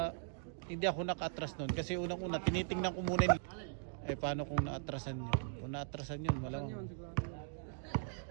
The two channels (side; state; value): left; silent; digital silence